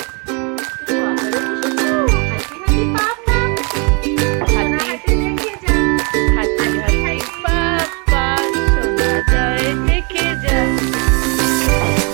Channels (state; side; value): quieter; left; 33.1 dB